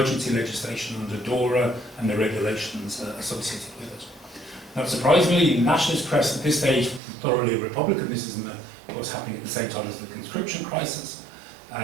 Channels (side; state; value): left; drops out; at 7.0 s